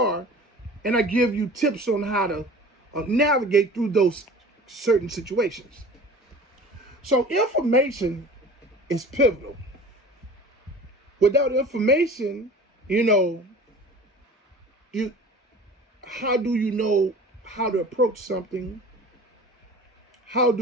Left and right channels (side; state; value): both; normal; correlation 0.41